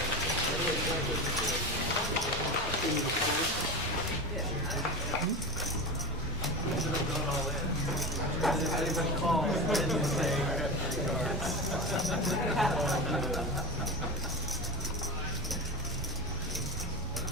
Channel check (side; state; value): both; normal; correlation 0.25